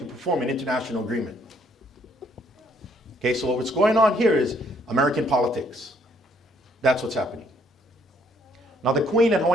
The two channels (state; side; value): normal; both; correlation 0.66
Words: perform an international agreement. Okay, so what's going on here is American politics. That's what's happening. Now, the Queen and